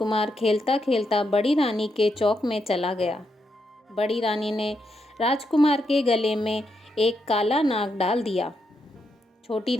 खेलता खेलता बड़ी रानी के चौक में चला गया। बड़ी रानी ने राजकुमार के गले में एक काला नाग डाल दिया। छोटी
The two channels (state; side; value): normal; both; correlation 0.81